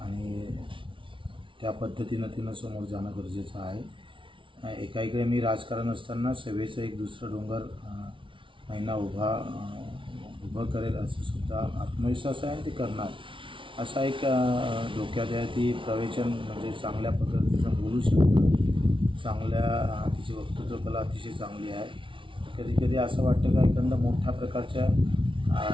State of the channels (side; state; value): left; late; 0.25 ms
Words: त्या पद्धतीनं तिनं समोर जाणं गरजेचं आहे. एकाइकडे मी राजकारण असताना सेवेचं एक दुसरं डोंगर नैना उभं करेल असं सुद्धा आत्मविश्वास आहे आणि ती करणार असा एक डोक्यात आहे. ती प्रवचन म्हणजे चांगल्या पद्धतीचं बोलू शकतं, तिची वक्तृत्व कला अतिशय चांगली आहे. कधी कधी असं वाटतं का एखादा मोठ्या प्रकारच्या